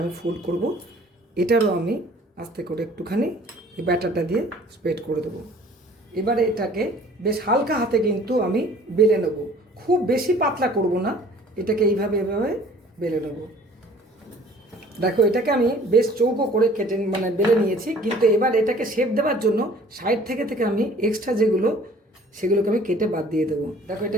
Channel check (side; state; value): both; normal; correlation 0.52